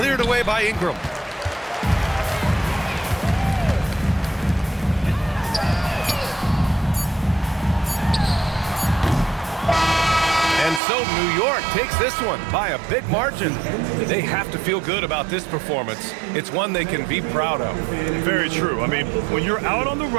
away by Ingram. And so New York takes this one by a big margin. They have to feel good about this performance. It's one they can be proud of. Very true. I mean, when you're out on the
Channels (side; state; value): left; drops out; at 10.8 s